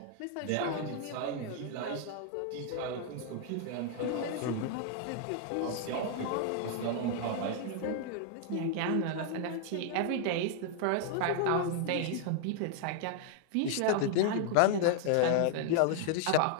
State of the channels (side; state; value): both; different; correlation 0.00